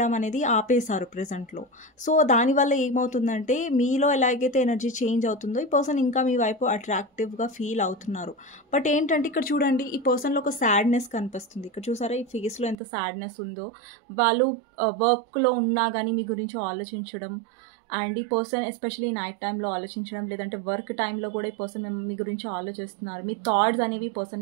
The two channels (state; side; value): drops out; left; at 12.8 s